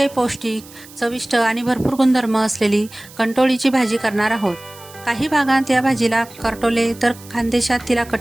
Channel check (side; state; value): right; noise; hiss, 21 dB below the sound